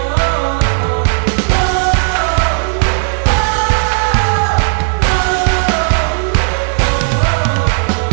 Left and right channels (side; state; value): left; silent; 57 dB below the other